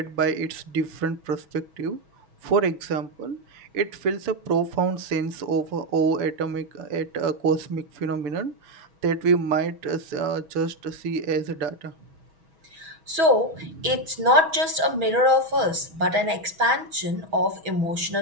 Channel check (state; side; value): late; left; 6.2 ms